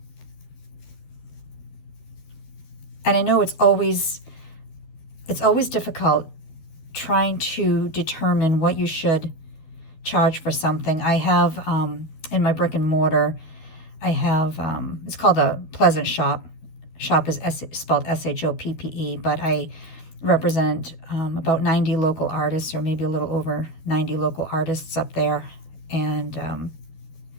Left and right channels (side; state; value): right; late; 12 ms